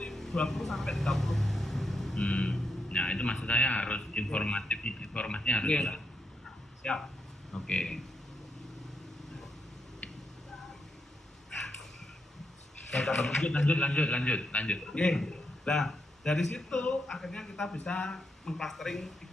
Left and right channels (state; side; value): normal; both; correlation 0.82